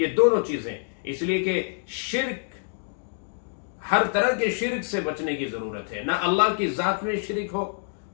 یہ دونوں چیزیں۔ اس لیے کہ شرک، ہر طرح کے شرک سے بچنے کی ضرورت ہے۔ نہ اللہ کی ذات میں شرک ہو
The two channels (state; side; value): silent; right; digital silence